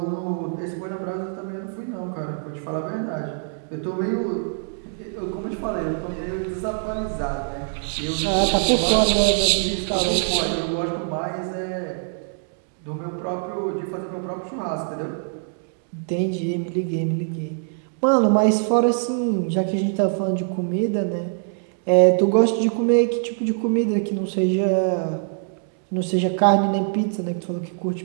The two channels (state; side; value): silent; left; digital silence